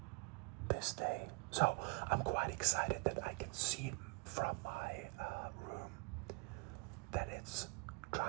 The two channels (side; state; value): left; quieter; 31.8 dB